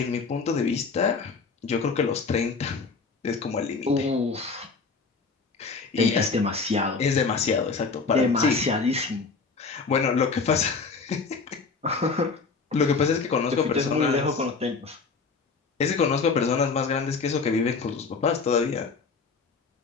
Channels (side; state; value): right; quieter; 4.7 dB